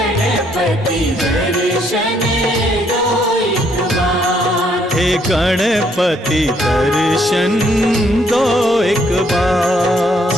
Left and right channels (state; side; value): normal; both; correlation 0.69